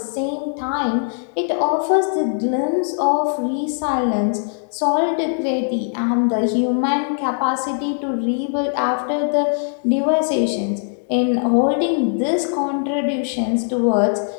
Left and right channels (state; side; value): silent; right; digital silence